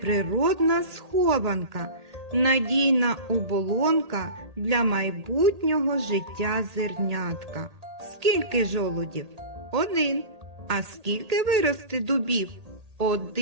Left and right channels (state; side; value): late; left; 1.8 ms